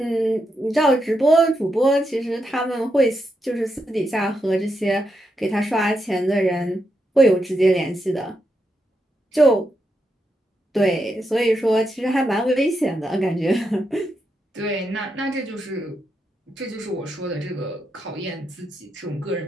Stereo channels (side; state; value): both; normal; correlation 0.84